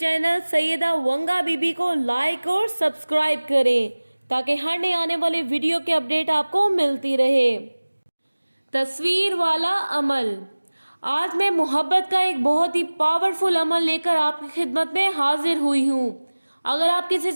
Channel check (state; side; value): inverted; both; correlation -1.00